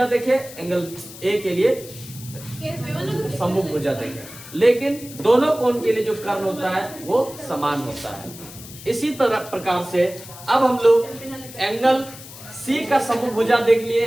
देखे, एंगल ए के लिए सम्मुख भुजा देखे, लेकिन दोनों कोण के लिए जो कर्ण होता है वो समान होता है। इसी तरह प्रकार से अब हम लोग एंगल सी का सम्मुख भुजा देख लिए,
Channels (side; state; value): left; noise; hiss, 16 dB below the sound